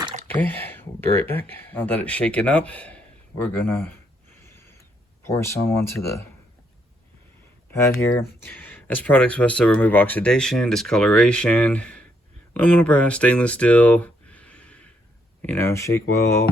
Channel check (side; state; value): both; normal; correlation 0.74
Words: Okay, we'll be right back. Now that it's shaken up, we're gonna pour some onto the pad here. This product's supposed to remove oxidation, discoloration, aluminum, brass, stainless steel, you know, shake well.